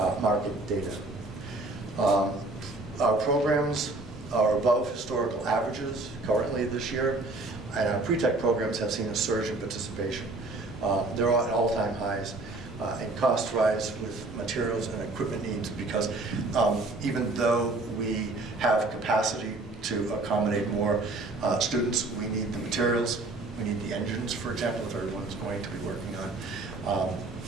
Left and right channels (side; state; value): left; quieter; 3.0 dB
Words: market data. Our programs are above historical averages currently this year, and our pre-tech programs have seen a surge in participation. They're at all-time highs, and costs rise with materials and equipment needs, because even though we have capacity to accommodate more students, we need the materials, we need the engines, for example, if everyone's going to be working on a